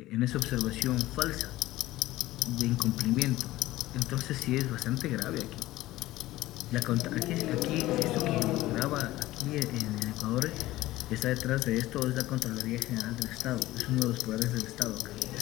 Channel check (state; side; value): quieter; right; 16.8 dB